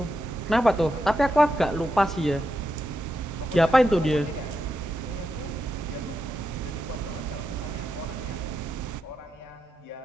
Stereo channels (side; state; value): both; normal; correlation 0.86